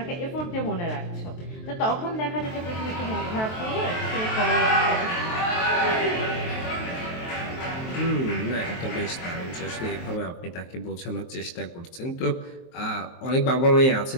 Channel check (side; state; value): right; late; 23 ms